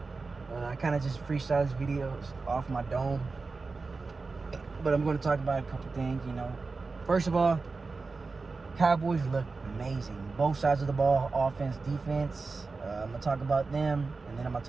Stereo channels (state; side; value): quieter; left; 4.1 dB